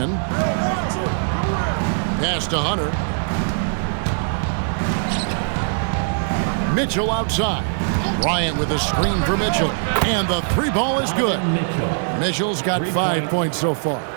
Pass to Hunter. Mitchell outside. Bryant with a screen for Mitchell. And the three ball is good. Mitchell's got 5 points so far.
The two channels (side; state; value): left; silent; digital silence